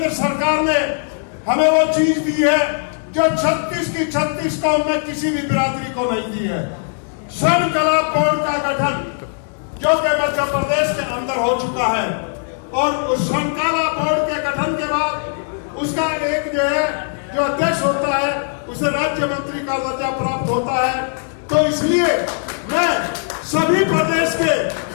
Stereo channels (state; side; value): silent; right; digital silence